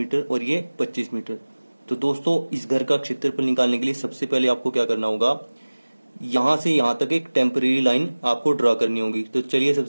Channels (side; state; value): both; inverted; correlation -1.00